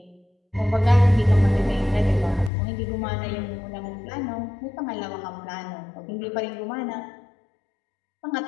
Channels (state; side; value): drops out; right; at 2.5 s